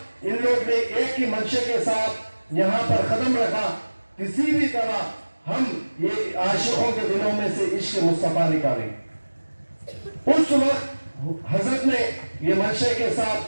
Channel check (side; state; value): both; inverted; correlation -1.00